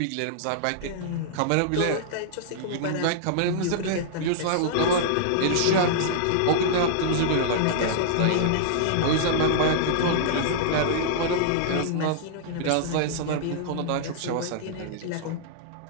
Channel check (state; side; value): different; both; correlation -0.02